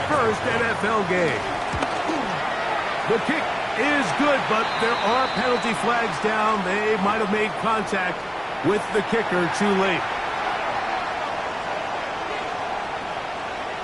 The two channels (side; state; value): both; identical; correlation 1.00